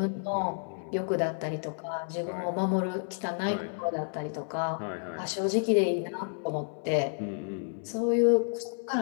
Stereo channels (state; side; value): silent; right; 58 dB below the other